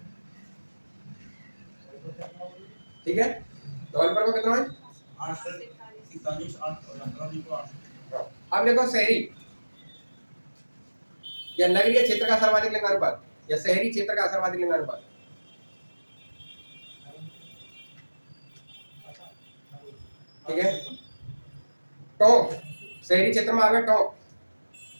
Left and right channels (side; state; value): both; inverted; correlation -1.00